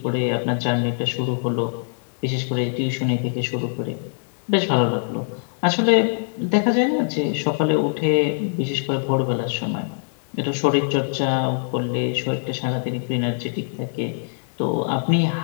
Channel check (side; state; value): right; silent; digital silence